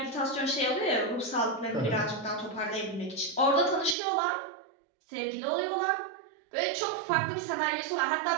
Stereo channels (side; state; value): left; drops out; at 4.0 s